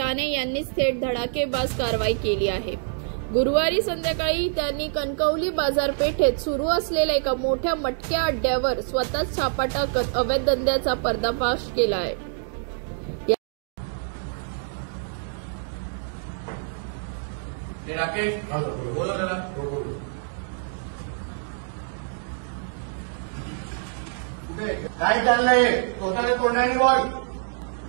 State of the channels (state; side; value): silent; left; digital silence